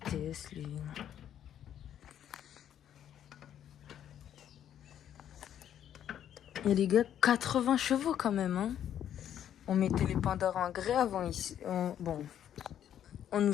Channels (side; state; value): right; quieter; 10.1 dB